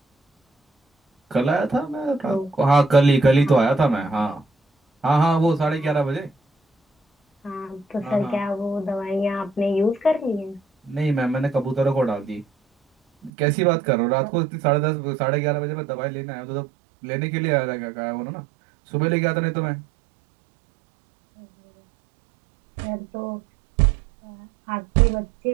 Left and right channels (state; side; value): drops out; left; at 13.3 s